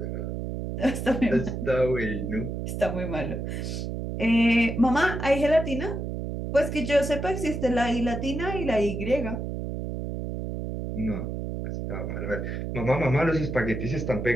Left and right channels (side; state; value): right; noise; hum, 4 dB below the sound